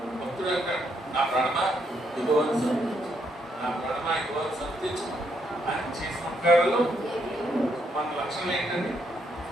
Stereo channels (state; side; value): normal; both; correlation 0.75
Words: భక్తుడు అంటాడు, నా ప్రాణమా యెహోవాను స్తుతించు, నా ప్రాణమా యెహోవాను స్తుతించు. ఆయన చేసిన ఉపకారాలు మన లక్షణం ఏంటండి?